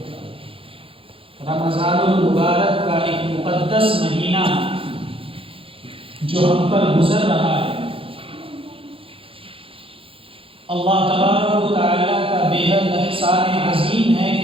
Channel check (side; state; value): left; late; 0.27 ms